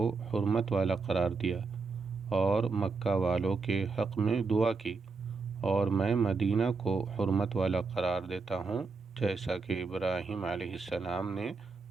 حرمت والا قرار دیا اور مکہ والوں کے حق میں دعا کی، اور میں مدینہ کو حرمت والا قرار دیتا ہوں جیسا کہ ابراہیم علیہ السلام نے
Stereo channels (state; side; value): quieter; left; 4.4 dB